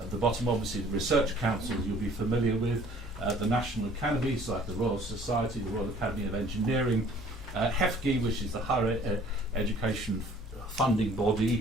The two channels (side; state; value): both; normal; correlation 0.54